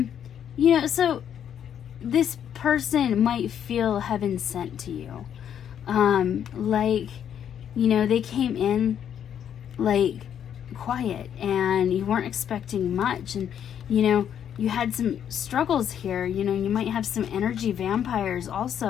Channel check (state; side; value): quieter; right; 9.2 dB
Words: You know, so this person might feel heaven sent to you. Like, you know, they came in like quiet and you weren't expecting much, and, you know, you had some struggles here. You know, you might have some energy vampires